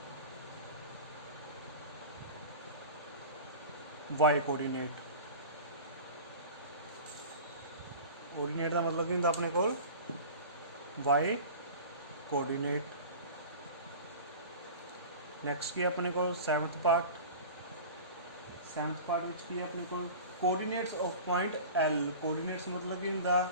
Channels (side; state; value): both; inverted; correlation -0.36